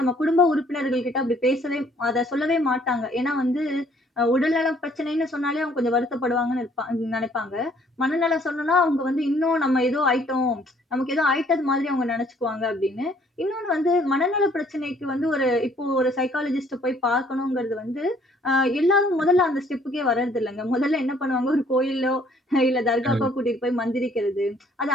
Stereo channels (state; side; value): normal; both; correlation 0.62